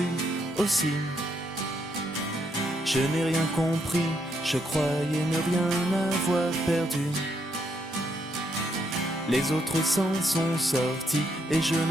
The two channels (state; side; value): normal; both; correlation 0.76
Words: aussi. Je n'ai rien compris, je croyais ne rien avoir perdu. Les autres s'en sont sortis et je